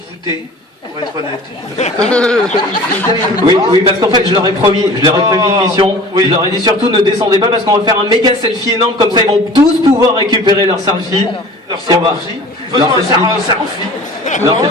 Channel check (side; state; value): both; normal; correlation 0.43